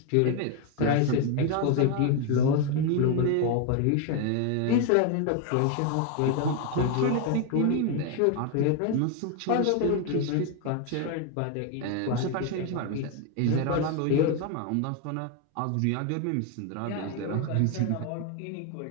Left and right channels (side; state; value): both; different; correlation 0.01